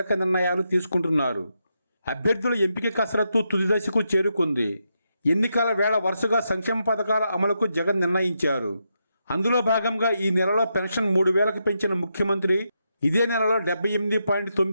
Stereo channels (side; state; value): both; inverted; correlation -0.83